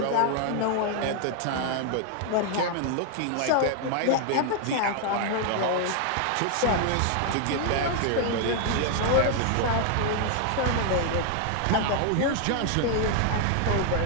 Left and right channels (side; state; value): both; different; correlation 0.00